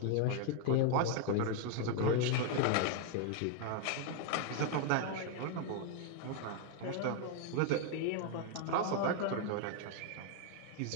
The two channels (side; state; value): both; different; correlation 0.00